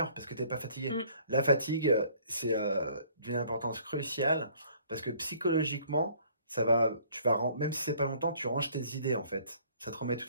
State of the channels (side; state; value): both; inverted; correlation -0.58